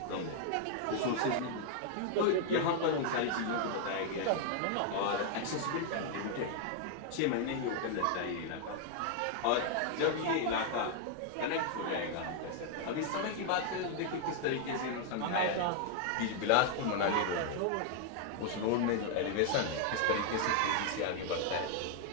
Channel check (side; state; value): both; different; correlation 0.00